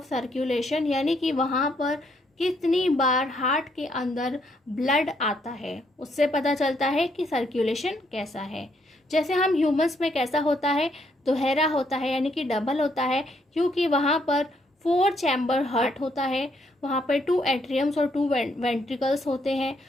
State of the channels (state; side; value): normal; both; correlation 0.73